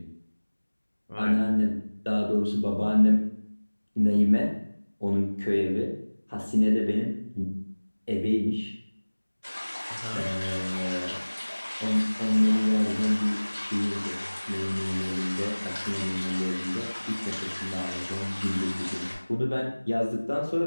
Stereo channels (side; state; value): both; inverted; correlation -1.00